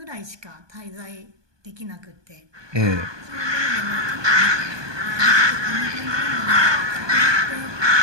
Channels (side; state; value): left; late; 1.2 ms